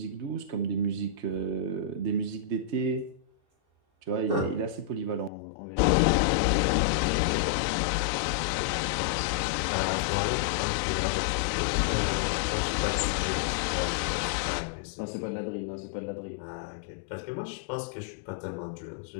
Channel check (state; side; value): drops out; right; at 5.3 s